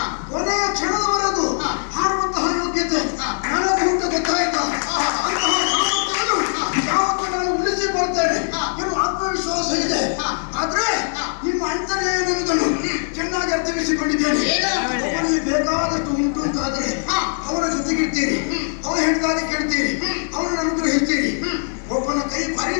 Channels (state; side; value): silent; right; digital silence